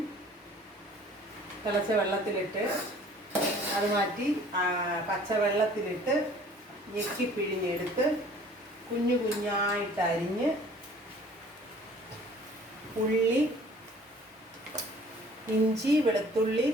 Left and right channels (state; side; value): normal; both; correlation 0.52